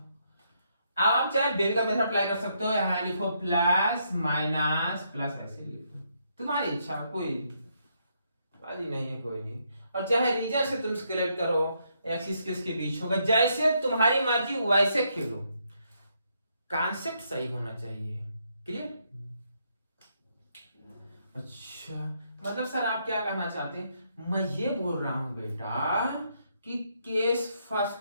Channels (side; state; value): both; inverted; correlation -0.75